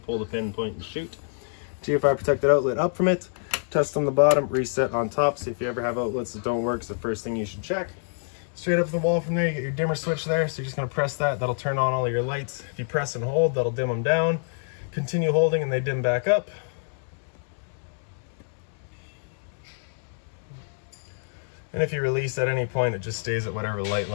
pull the pin, point, and shoot. GFI protected outlet up from it. Test on the bottom, reset on top. So if you ever have outlets that don't work, it's the first thing you should check. Straight up the wall from there, you get your dimmer switch there. So you're just gonna press that, that'll turn on all of your lights. If you press and hold, that'll dim them down. Continue holding and they dim back up. And if you release at any point, it just stays at whatever light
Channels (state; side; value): silent; right; digital silence